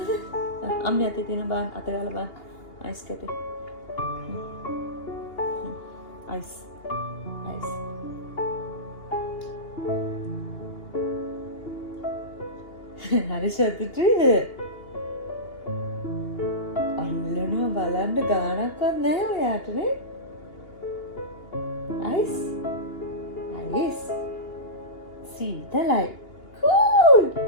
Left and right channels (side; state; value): right; late; 2.8 ms